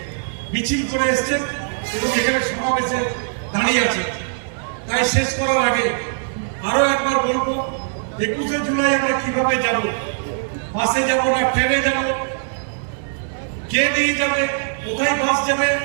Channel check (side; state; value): left; silent; digital silence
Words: মিছিল করে এসছেন এবং এখানে সমাবেশে দাঁড়িয়ে আছেন। তাই শেষ করার আগে আরো একবার বলবো, 21শে জুলাই আমরা কিভাবে যাব, বাসে যাব না ট্রেনে যাব, কে নিয়ে যাবে, কোথায় বাস যাবে,